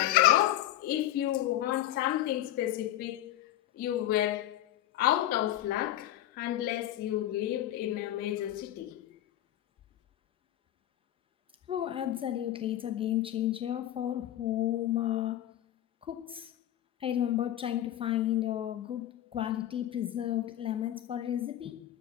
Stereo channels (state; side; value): quieter; right; 13.3 dB